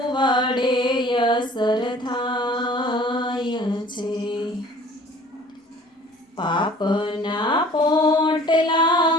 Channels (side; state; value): both; normal; correlation 0.50